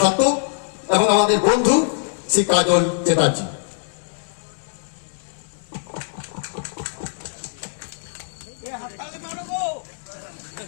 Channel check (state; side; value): silent; right; digital silence